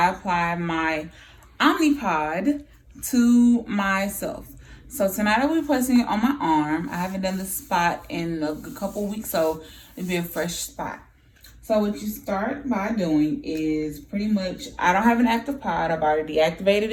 apply my Omnipod to myself. So tonight I'll be placing it on my arm. I haven't done this spot in a couple weeks, so it'll be a fresh spot. So what you start by doing is pretty much, I don't have an active pod. I've already deactivated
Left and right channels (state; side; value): identical; both; correlation 1.00